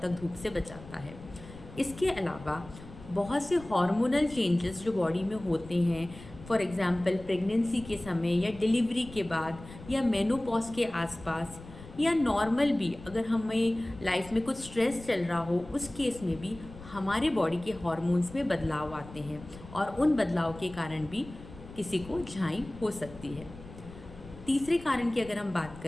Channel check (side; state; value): left; noise; rumble, 17 dB below the sound